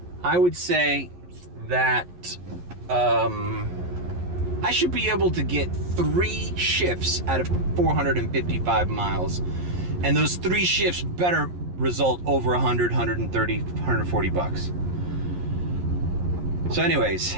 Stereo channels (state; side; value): late; left; 11 ms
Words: I would say that I should be able to get 3 shifts out of 455 miles. And those 3 shifts better result over 100, 130, 140 bucks. So anyways,